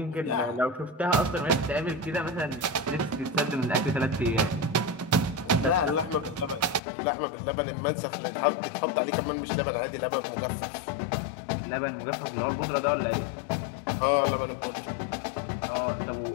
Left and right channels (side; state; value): right; drops out; at 6.8 s